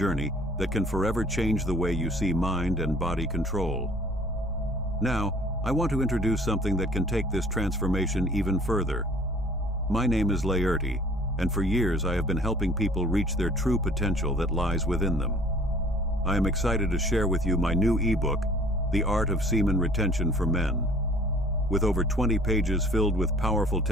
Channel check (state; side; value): normal; both; correlation 0.52